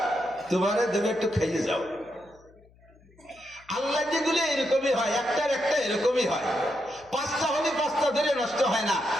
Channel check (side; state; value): left; noise; hum, 28 dB below the sound